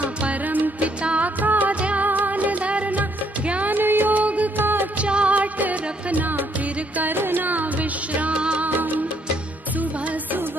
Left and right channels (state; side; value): normal; both; correlation 0.70